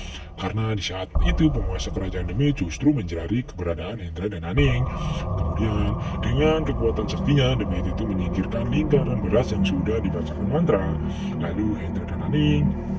Karena di saat itu penguasa kerajaan demit justru mencari keberadaan Hendra dan Aning. Kemudian dengan kekuatan saktinya demit itu menyingkirkan lingkaran beras yang sudah dibacakan mantra. Lalu Hendra dan Aning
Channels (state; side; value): identical; both; correlation 1.00